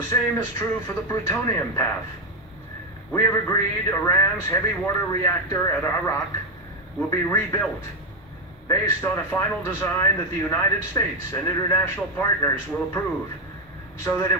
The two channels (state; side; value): normal; both; correlation 0.08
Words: same is true for the plutonium path. We have agreed Iran's heavy water reactor at Arak will be rebuilt based on a final design that the United States and international partners will approve, so that